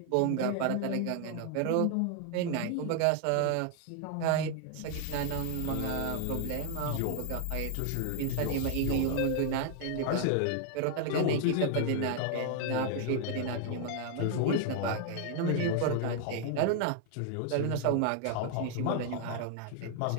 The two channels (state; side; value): different; both; correlation 0.00